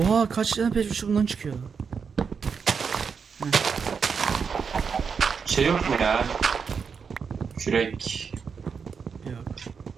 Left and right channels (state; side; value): quieter; left; 6.0 dB